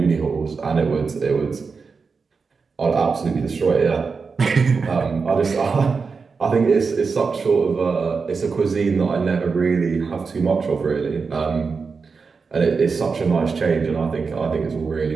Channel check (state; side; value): quieter; left; 5.0 dB